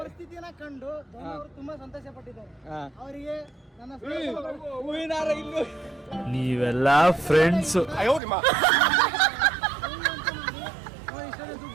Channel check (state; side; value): drops out; left; at 8.2 s